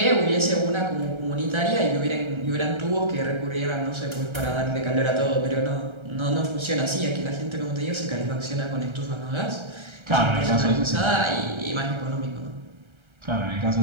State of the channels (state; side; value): late; left; 1.3 ms